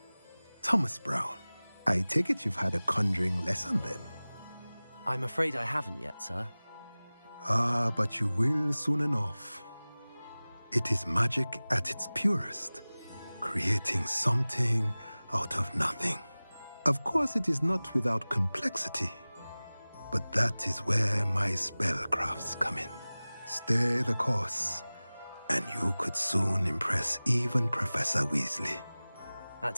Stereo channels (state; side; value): inverted; both; correlation -0.99